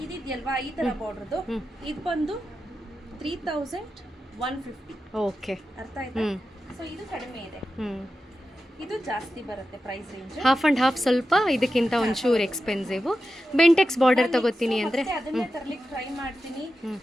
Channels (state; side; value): normal; both; correlation 0.91